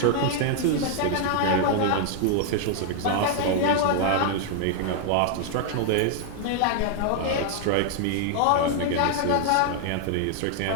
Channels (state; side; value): different; both; correlation 0.00